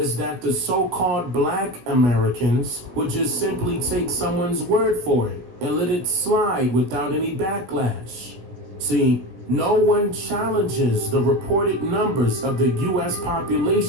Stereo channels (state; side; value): late; left; 17 ms